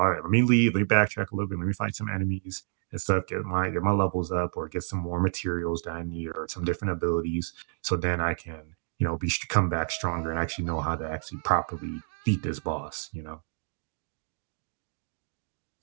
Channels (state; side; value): silent; left; digital silence